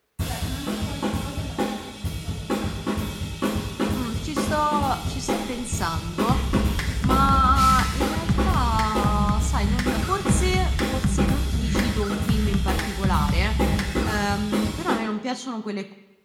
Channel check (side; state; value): both; identical; correlation 1.00